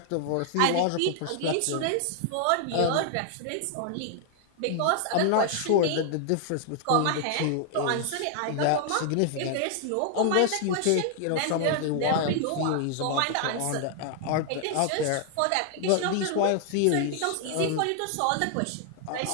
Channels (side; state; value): both; different; correlation 0.00